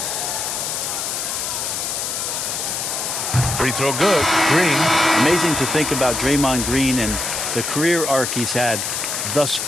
Free throw good. Green. Amazing to think about Draymond Green and the career arc he's had thus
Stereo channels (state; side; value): noise; left; hiss, 2 dB below the sound